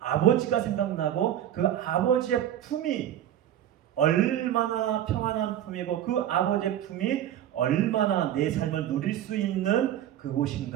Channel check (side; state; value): left; quieter; 11.3 dB